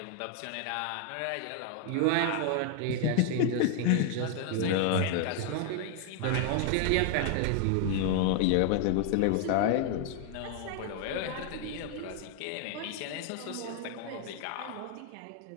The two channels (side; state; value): both; different; correlation 0.00